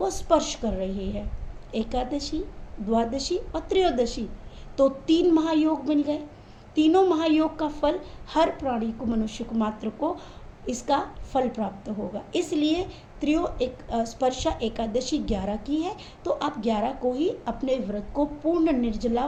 स्पर्श कर रही है, एकादशी, द्वादशी और त्रयोदशी, तो 3 महायोग मिल गए। तीनों महायोग का फल हर प्राणी को, मनुष्य को मात्र को इसका फल प्राप्त होगा। इसलिए स्पर्शा एकादशी 11 की है, तो आप 11 को ही अपने व्रत को पूर्ण निर्जला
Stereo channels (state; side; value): identical; both; correlation 1.00